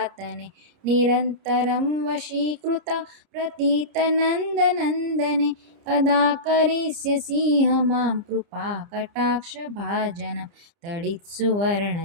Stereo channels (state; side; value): late; left; 30 ms